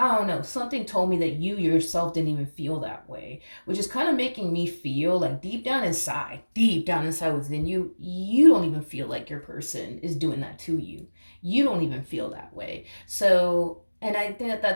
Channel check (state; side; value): inverted; both; correlation -1.00